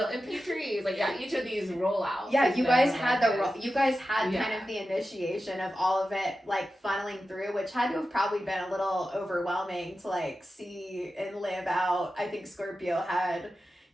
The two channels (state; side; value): normal; both; correlation 0.92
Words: MP3s. Like each of these rollouts. You guys had kind of the initiation of all of it like funneling through, which had to have probably been a little overwhelming to like see and live out. I think Scorpio had,